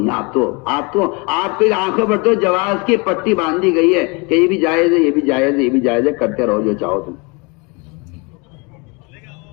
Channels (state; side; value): quieter; right; 29.3 dB